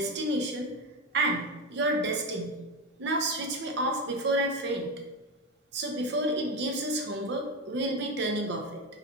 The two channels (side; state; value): both; normal; correlation 0.16